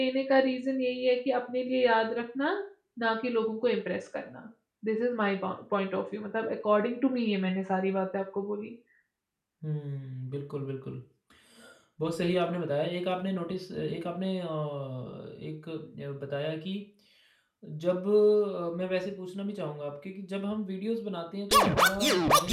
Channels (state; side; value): identical; both; correlation 1.00